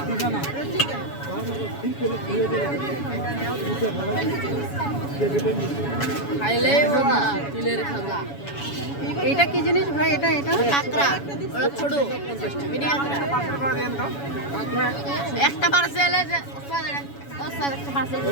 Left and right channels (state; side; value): late; right; 7.1 ms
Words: খাইলে তিলের খাজা। এইটা কি জিনিস ভাই? এটা এটা কাঁকড়া ওটা ছোট মিনি কাঁকড়া। একটা পার্সেল আছে ওস্তাদ একটা পার্সেল